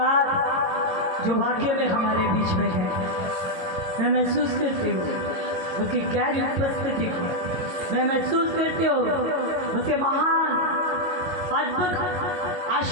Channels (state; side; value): late; left; 22 ms